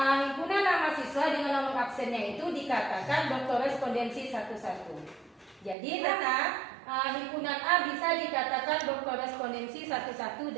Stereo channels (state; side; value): drops out; left; at 5.8 s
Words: himpunan nama siswa dengan nomor absennya itu dikatakan berkorespondensi satu-satu. Jadi himpunan A bisa dikatakan berkorespondensi satu-satu